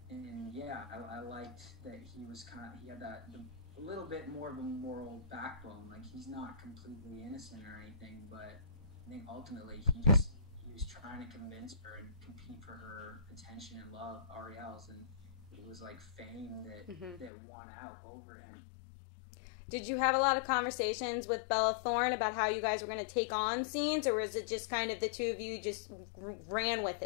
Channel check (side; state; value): right; drops out; at 17.3 s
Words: and yeah, I liked that he had a little bit more of a moral backbone. Like he's not completely innocent or anything, but I think ultimately he was trying to convince her and compete for her attention and love, Ariel's, and it was like fame Mm-hmm. that won out over him. Did you have a lot of conversations with Bella Thorne about how you guys were going to take on scenes, or was it just kind of the two of you just ran with